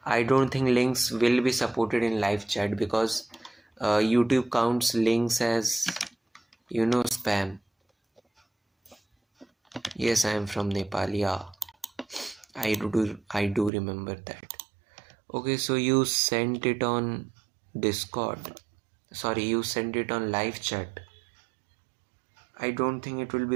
I don't think links will be supported in live chat because YouTube counts links as, spam. Yes, I am from Nepal, yeah. I do remember that. Okay, so you sent it on Discord. Sorry, you sent it on live chat. I don't think it will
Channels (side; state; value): left; drops out; at 13.7 s